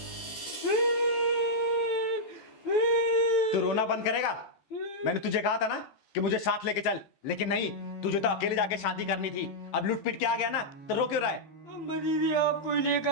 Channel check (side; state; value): right; late; 14 ms